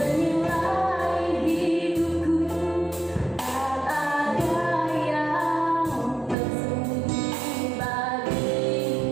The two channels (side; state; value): left; drops out; at 6.4 s